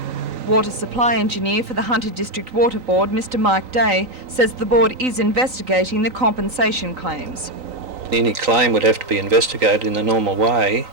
Water supply engineer for the Hunter District Water Board, Mr Mike Day, says the board is investigating the compensation claims. Any claim would have to be investigated in the normal way,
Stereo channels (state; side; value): late; left; 3.9 ms